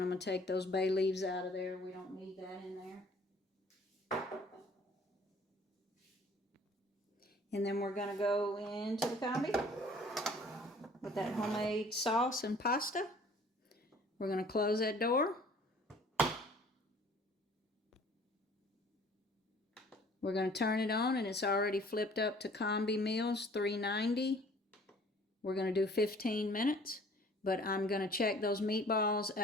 I'm going to take those bay leaves out of there. We don't need that in there. And then we're going to go into the combi with that homemade sauce and pasta. We're going to close that door. We're going to turn it on, and it's already flipped up to Combi Meals 390. We're going to do 15 minutes, but I'm going to check those meatballs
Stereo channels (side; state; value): both; normal; correlation 0.53